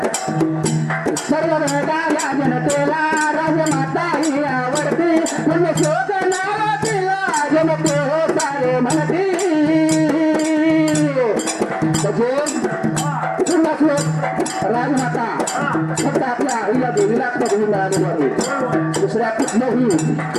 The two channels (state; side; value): identical; both; correlation 1.00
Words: सर्व वेगाला जनतेला राजमाता ही आवडती. म्हणजे शोध नाव तिला जनते हो सारे म्हणती. पुन्हा श्लोक राजमाता फक्त आपल्या आईला देवीला पदवी मिळालेली आहे. दुसऱ्या कुठल्याही